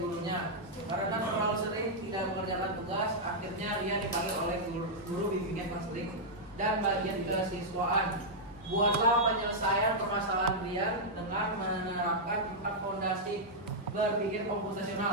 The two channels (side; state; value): both; normal; correlation -0.06